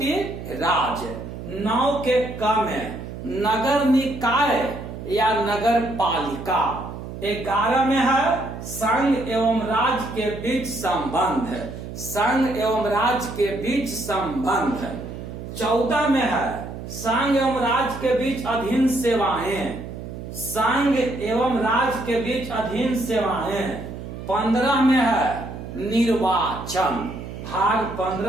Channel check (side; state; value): right; noise; hum, 10 dB below the sound